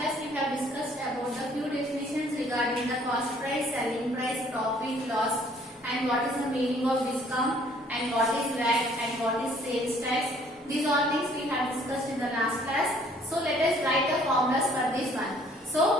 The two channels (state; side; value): normal; both; correlation 0.59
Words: we have discussed about the few definitions regarding the cost price, selling price, profit, loss, and what is the meaning of discount, and what is VAT, and what is sales tax. These all things we have discussed in the last class. So let us write the formulas for this one.